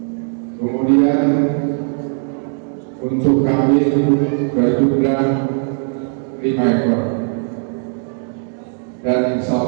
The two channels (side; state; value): left; silent; 60 dB below the other